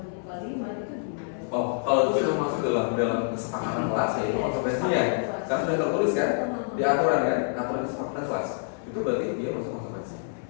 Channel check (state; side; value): silent; right; 59 dB below the other